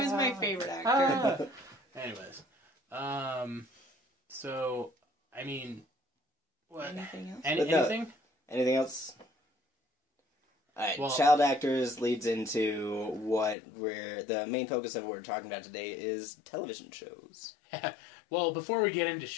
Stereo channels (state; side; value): drops out; right; at 13.6 s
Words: my favorite actor. Anyways, so I mean, what? Anything else? But no. Anything? Anything else? Alright, Well- child actors leads into what we're... The main focus of what we're talking about today is television shows. Well, before we get into